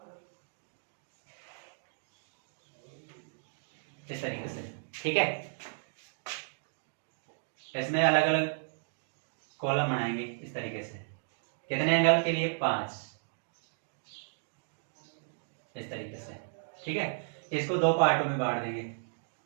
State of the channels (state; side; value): silent; left; digital silence